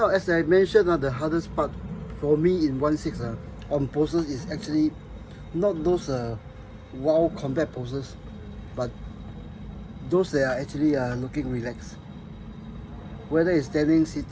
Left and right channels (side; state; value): both; identical; correlation 1.00